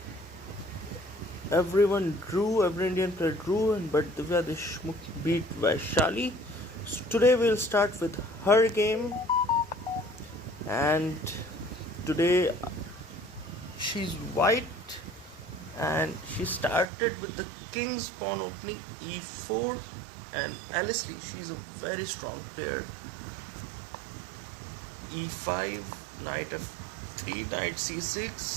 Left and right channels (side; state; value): left; drops out; at 16.9 s